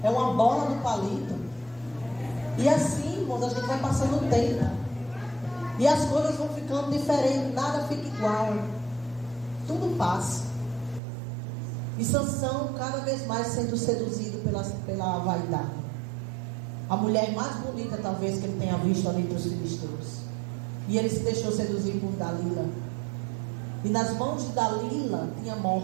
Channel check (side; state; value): left; drops out; at 11.0 s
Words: é uma bola do palito. E assim, irmãos, a gente vai passando o tempo. E as coisas vão ficando diferentes, nada fica igual. Tudo passa. E Sansão cada vez mais sendo seduzido pela vaidade. A mulher mais bonita talvez que ele tenha visto ali entre os filisteus. E ele se deixou seduzir por Dalila. E nas mãos de Dalila tinha